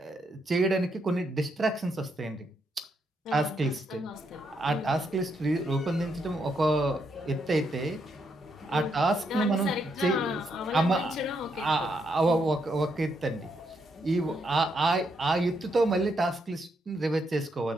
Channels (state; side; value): normal; both; correlation 0.78